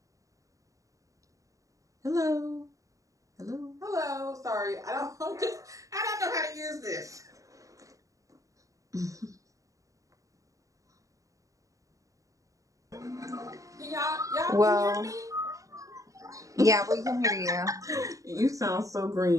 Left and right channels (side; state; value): left; late; 0.16 ms